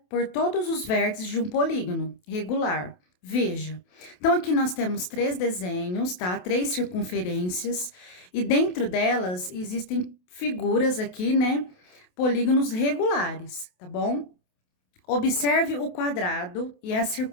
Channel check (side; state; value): right; late; 28 ms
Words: por todos os vértices de um polígono regular. Veja, então aqui nós temos três desenhos, tá? Três circunferências, e dentro delas existem figuras aqui, né? Polígonos regulares, tá bom? Observe o quadrado e a